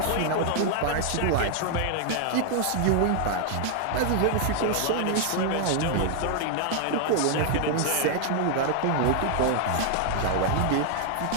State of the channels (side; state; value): both; different; correlation 0.00